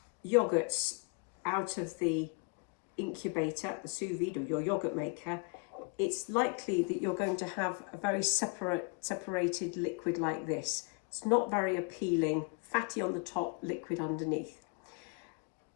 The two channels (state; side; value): quieter; right; 31.5 dB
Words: yoghurts out of the incubator, the sous vide, or your yoghurt maker, it's likely that you're going to have a very separated liquid like this. It's not very appealing, fatty on the top, liquid underneath.